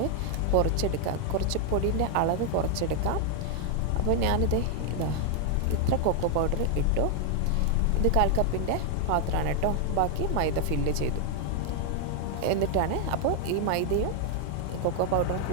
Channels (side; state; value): both; different; correlation 0.00